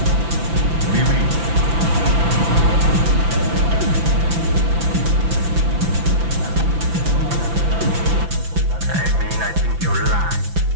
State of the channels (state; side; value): late; left; 5.9 ms